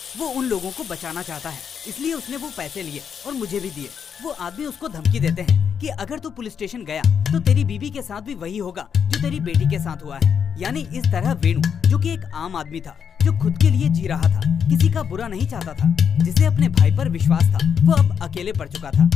वो उन लोगों को बचाना चाहता है, इसलिए उसने वो पैसे लिए और मुझे भी दिए। वो आदमी उसको धमकी देते हैं कि अगर तू पुलिस स्टेशन गया तो तेरी बीवी के साथ भी वही होगा जो तेरी बेटी के साथ हुआ है। यानी इस तरह वेणु, जो कि एक आम आदमी था, जो खुद के लिए जी रहा था, किसी का बुरा नहीं चाहता था, जिसे अपने भाई पर विश्वास था, वो अब अकेले पड़ चुका था।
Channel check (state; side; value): quieter; right; 7.3 dB